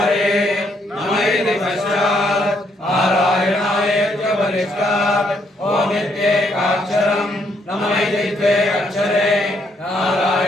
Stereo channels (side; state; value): both; normal; correlation 0.73